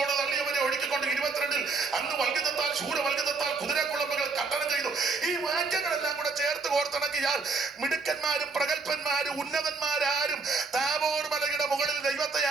തള്ളിയവരെ ഒഴുക്കിക്കൊണ്ട് 22-ൽ അന്ന് വൽഗിതത്താൽ ശൂരവൽഗിതത്താൽ കുതിരക്കുളമ്പുകൾ കട്ടണം ചെയ്തു. ഈ വാക്യങ്ങളെല്ലാം കൂടെ ചേർത്ത് കോർത്തിണക്കിയാൽ മിടുക്കന്മാരും പ്രഗത്ഭന്മാരും ഉന്നതന്മാരാരും താബോർ മലയുടെ മുകളിൽ ദൈവത്തെ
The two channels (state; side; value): quieter; left; 4.2 dB